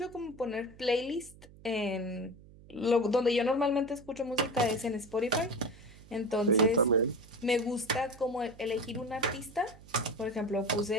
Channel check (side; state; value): right; noise; hum, 21 dB below the sound